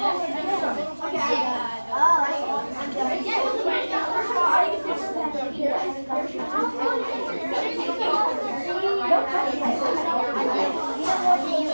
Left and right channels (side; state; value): both; inverted; correlation -1.00